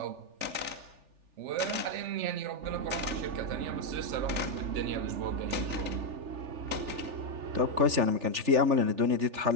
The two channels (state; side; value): late; left; 3.4 ms